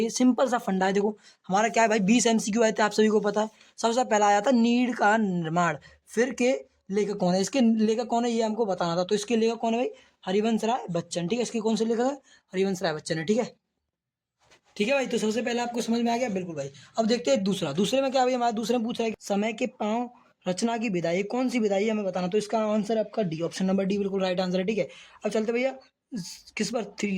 सिंपल सा फंडा है। देखो हमारा क्या है भाई, 20 एमसीक्यू आए थे, आप सभी को पता है। सबसे पहला आया था नीड का निर्माण, फिर के लेखक कौन है, इसके लेखक कौन है ये हमको बताना था। तो इसके लेखक कौन है भाई, हरिवंश राय बच्चन, ठीक है। इसके कौन से लेखक है, हरिवंश राय बच्चन है, ठीक है। ठीक है भाई, तो सबसे पहले आपको समझ में आ गया, बिल्कुल भाई। अब देखते हैं दूसरे में क्या भाई, हमारे दूसरे में पूछ रहा है कि समय के पांव रचना की विधाई, कौन सी विधाई है हमें बताना। तो इसका आंसर आपका डी, ऑप्शन नंबर डी बिल्कुल राइट आंसर है, ठीक है। अब चलते भैया किस पर,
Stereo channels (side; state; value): both; identical; correlation 1.00